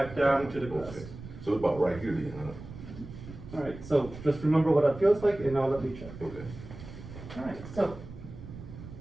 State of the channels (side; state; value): right; noise; rumble, 14 dB below the sound